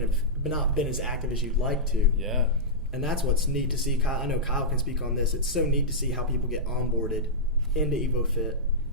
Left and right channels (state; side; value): normal; both; correlation -0.11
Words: as active as you'd like to. Yeah. And that's what's neat to see. Kyle, I know Kyle can speak on this. It's so neat to see how people get onboarded into ēvoFit